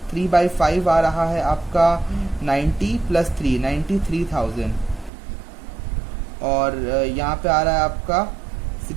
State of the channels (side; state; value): left; drops out; at 5.1 s